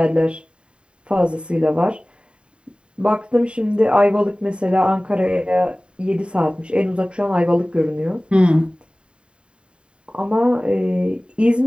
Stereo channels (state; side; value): late; left; 0.053 ms